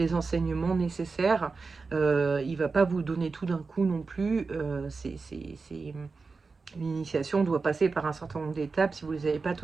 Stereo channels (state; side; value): quieter; left; 4.4 dB